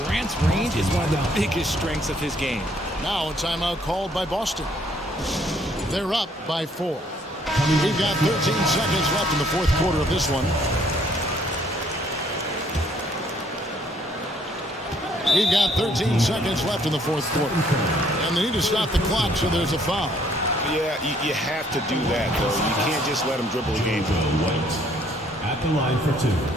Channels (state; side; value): normal; both; correlation 0.64